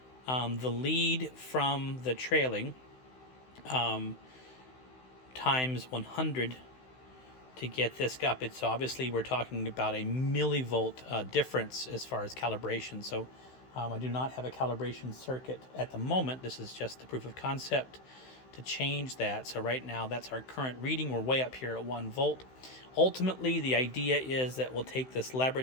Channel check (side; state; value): right; late; 16 ms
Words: The lead from the trailing times 100 to get this up. It's obviously, we're talking about a millivolt difference as far as calibration. So I do not have a calibration circuit at the moment. This is just the proof of concept to change that. So right now that's our current reading. We're way up here at 1 volt. Ultimately, the idea is that we'll take this